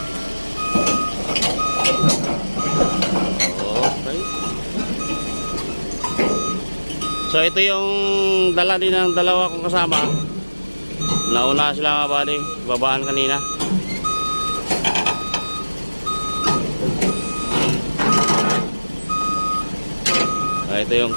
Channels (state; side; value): inverted; both; correlation -1.00